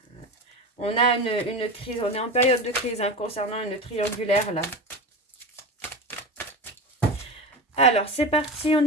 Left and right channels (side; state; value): both; normal; correlation 0.25